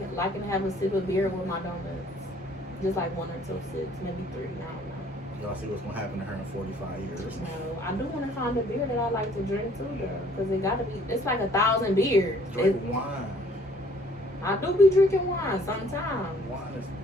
liking to have a sip of beer with my donuts. Just like 1 or 2 sips, maybe 3, I don't know. Y'all see what's gonna happen to her in 45 years. No, I do want to find a beer that I like to drink too, though, because it got to be. It's like 1,000 beers. Drink wine. I do be drinking wine sometimes. Wine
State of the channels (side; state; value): both; normal; correlation 0.59